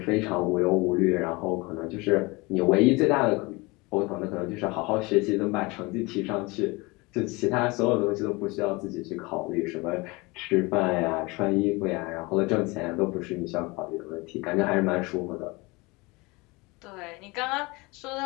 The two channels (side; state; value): right; quieter; 24.9 dB